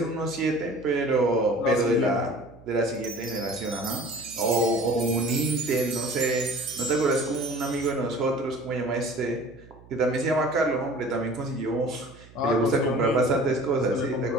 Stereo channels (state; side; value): noise; right; hum, 23 dB below the sound